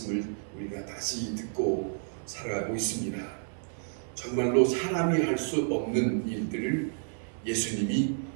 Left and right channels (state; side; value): silent; left; digital silence